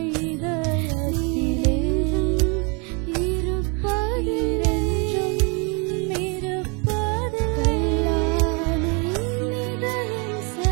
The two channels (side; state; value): left; quieter; 33.2 dB